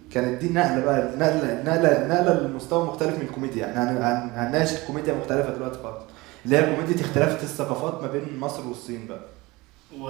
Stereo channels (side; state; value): left; quieter; 22.0 dB